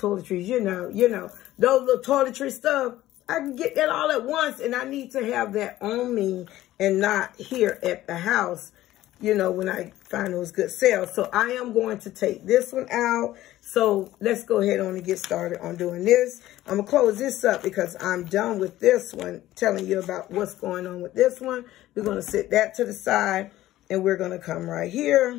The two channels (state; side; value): quieter; right; 15.0 dB